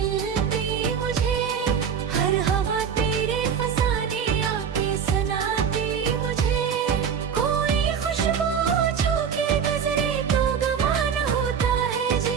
मुझे, हर हवा तेरे फसाने आके सुनाती मुझे। कोई खुशबू छू के नजरे तो गवान होता है,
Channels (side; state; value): left; quieter; 7.3 dB